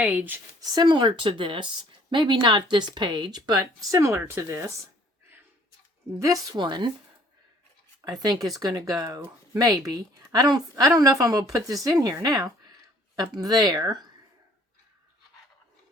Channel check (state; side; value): normal; both; correlation 0.58